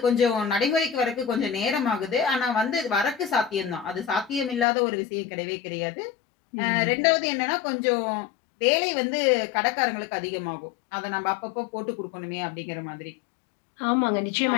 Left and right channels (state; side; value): drops out; right; at 4.7 s